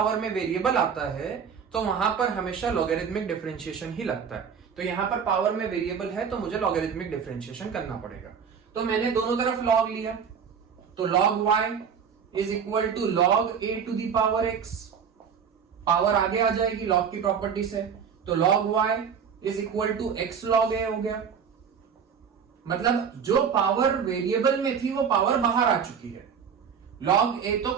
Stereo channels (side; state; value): left; quieter; 6.9 dB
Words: में वेरिएबल आता है तो वहां पर हमेशा लॉगरिथमिक डिफरेंशिएशन ही लगता है। तो यहां पर पावर में वेरिएबल है तो मुझे लॉगरिथमिक डिफरेंशिएशन करना पड़ेगा। तो मैंने दोनों तरफ लॉग लिया, तो log y is equal to log a⁴x, power आगे आ जाएगी लॉग की प्रॉपर्टी से, तो log y is equal to x log a हो गया। मतलब जो पावर वेरिएबल में थी वो पावर बाहर आ चुकी है। log a तो